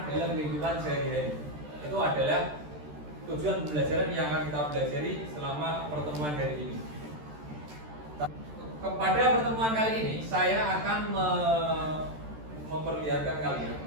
dalam kehidupan sehari-hari. Itu adalah tujuan pembelajaran yang akan kita pelajari selama pertemuan hari ini. Pada pertemuan kali ini, saya akan memperlihatkan kalian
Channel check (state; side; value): late; left; 13 ms